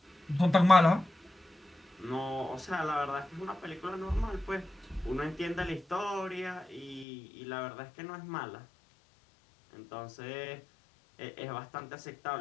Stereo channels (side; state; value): right; drops out; at 7.1 s